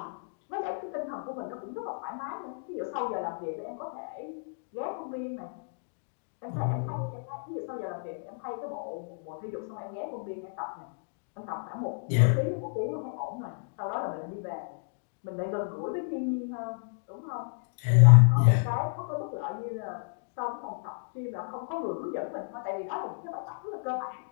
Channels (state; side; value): silent; right; digital silence